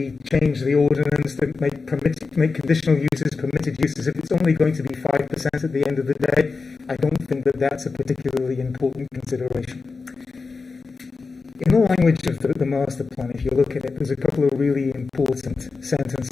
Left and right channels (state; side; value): quieter; right; 4.4 dB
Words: change the ordinance that make conditional uses permitted uses, if it's only going to be 5% at the end of the day, I don't think that that's a particularly important consideration. In the language of the master plan, if you look at it, there's a couple of really important